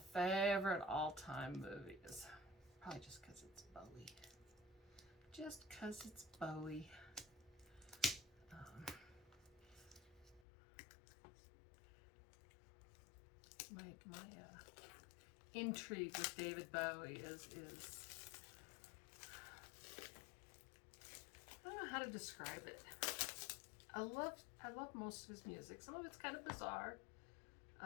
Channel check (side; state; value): right; drops out; at 10.5 s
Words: favorite all-time movies. Probably just because it's Bowie. Just because it's Bowie. My intrigue with David Bowie is I don't know how to describe it. I love most of his music. Some of it's kind of bizarre.